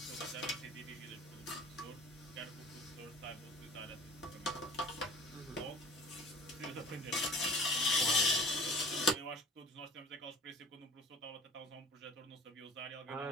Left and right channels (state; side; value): normal; both; correlation 0.45